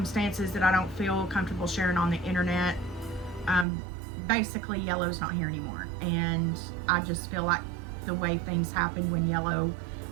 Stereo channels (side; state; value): left; drops out; at 3.7 s